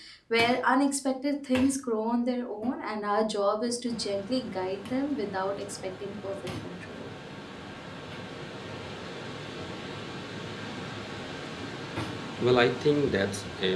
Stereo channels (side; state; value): both; identical; correlation 1.00